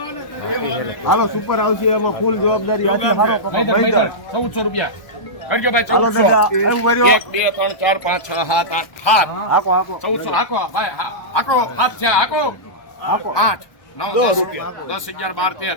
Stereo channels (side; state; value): right; late; 1.2 ms